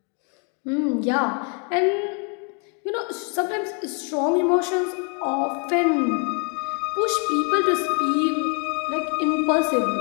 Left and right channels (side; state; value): right; quieter; 38.0 dB